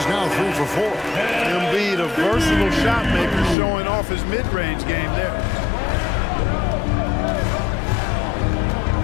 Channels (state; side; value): drops out; right; at 3.6 s